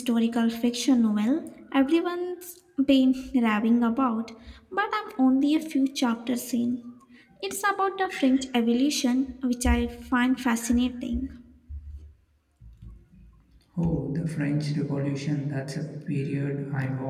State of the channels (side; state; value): both; identical; correlation 1.00